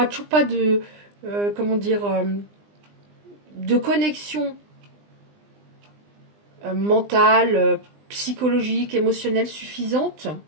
toujours pas de, de connexion mentale, psychologique, émotionnelle suffisante.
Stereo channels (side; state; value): left; late; 20 ms